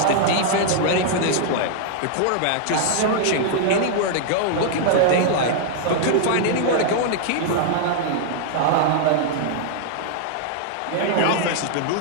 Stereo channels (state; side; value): different; both; correlation -0.01